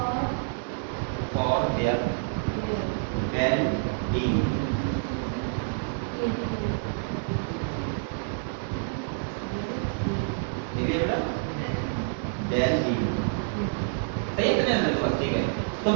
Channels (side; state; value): left; silent; 59 dB below the other